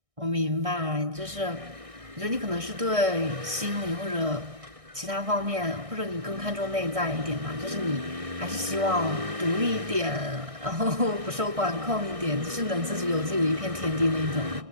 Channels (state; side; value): late; left; 1.6 ms